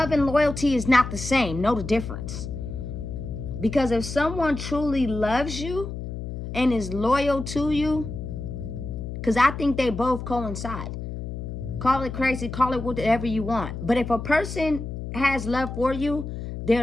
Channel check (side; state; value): left; noise; hum, 7 dB below the sound